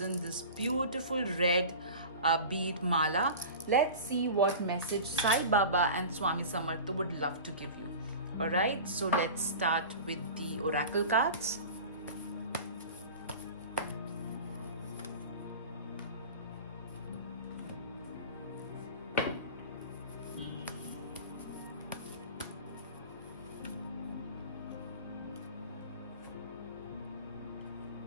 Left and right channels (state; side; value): inverted; both; correlation -0.35